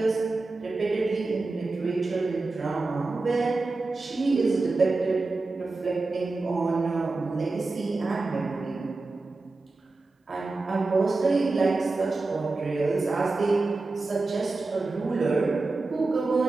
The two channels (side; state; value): left; quieter; 3.5 dB